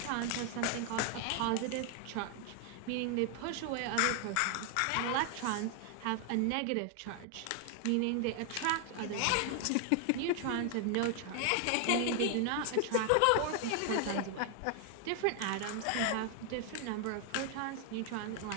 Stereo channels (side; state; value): both; different; correlation 0.00